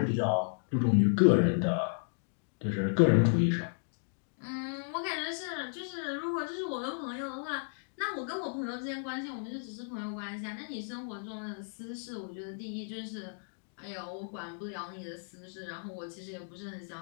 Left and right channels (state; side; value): silent; right; digital silence